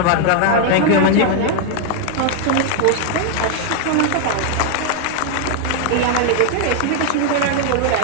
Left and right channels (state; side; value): different; both; correlation 0.00